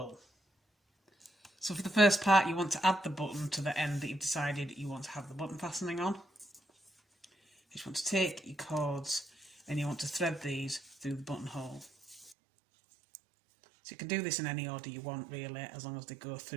So for the first part, you want to add the button to the end that you've decided you want to have the button fastening on. You just want to take your cords and you want to thread these through the buttonhole. So you can do this in any order you want really, as long as they go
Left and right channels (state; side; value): drops out; left; at 12.4 s